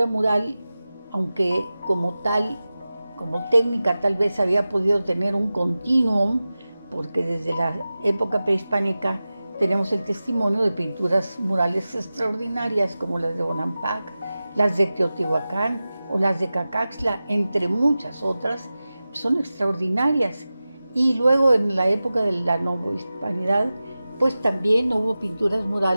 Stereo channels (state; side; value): inverted; both; correlation -0.96